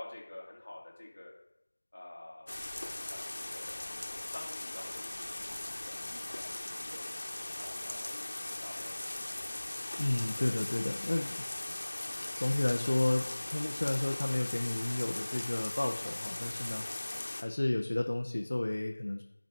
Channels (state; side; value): inverted; both; correlation -1.00